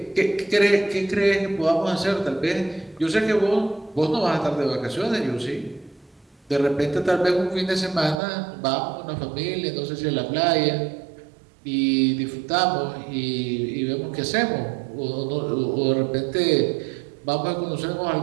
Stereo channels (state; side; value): drops out; left; at 8.2 s